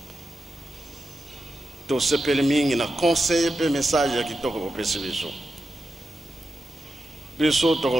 to sepele mingi na conseil pe message ya kitoko au pesibiso. Biso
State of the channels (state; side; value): normal; both; correlation 0.89